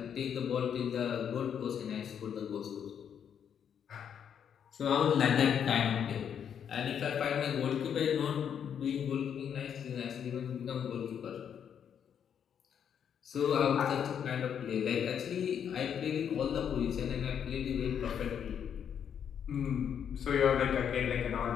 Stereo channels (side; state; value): right; quieter; 8.3 dB